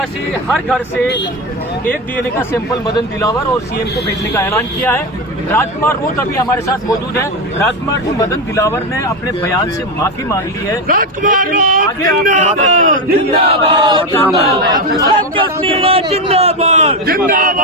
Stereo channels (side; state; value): both; normal; correlation 0.13